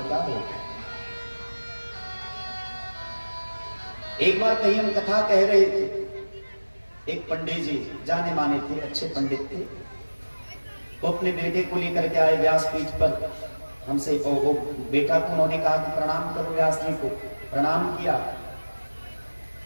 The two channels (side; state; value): both; inverted; correlation -1.00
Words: क्या हो। एक बार कहीं हम कथा कह रहे थे, एक पंडित जी जाने माने थे, अच्छे पंडित थे, वो अपने बेटे को लेकर के आए व्यासपीठ पर। हमसे वो बेटा को उन्होंने कहा कि प्रणाम करो व्यास जी को। प्रणाम किया।